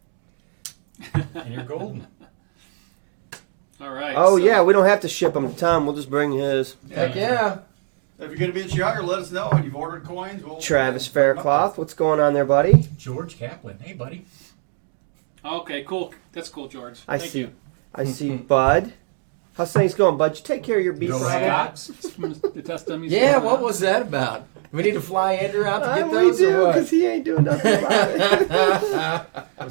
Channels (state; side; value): silent; left; 59 dB below the other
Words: and your golden. All right. Oh so- yeah, we don't have to ship them to Tom. We'll just bring his. Heck yeah. If you're going to be in Chicago, let us know. And you've ordered coins. We'll Travis we'll bring 'em up Faircloth, what's going on there, buddy? George Kaplan. Hey, buddy. Okay, cool. That's cool, George. I Thank see. you. I see, Bud. How's things going, Bud? You take care of your beef. Go problem? Habs. The test dummies. Yeah, what was that about? Do we need to fly Andrew out to get those We or do, what? 'cause he ain't doing nothing about it.